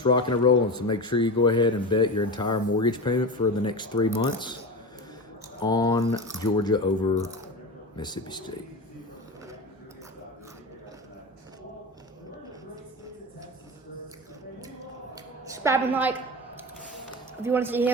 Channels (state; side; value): normal; both; correlation 0.25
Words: rocking and rolling. So make sure you go ahead and bet your entire mortgage payment for the next 3 months on Georgia over Mississippi State. Subscribe and like if you want to see